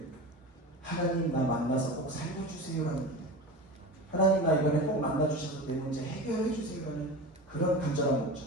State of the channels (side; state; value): both; normal; correlation 0.29